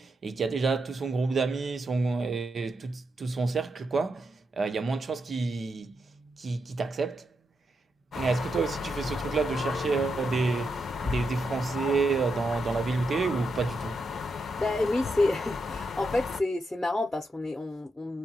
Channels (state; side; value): normal; both; correlation 0.84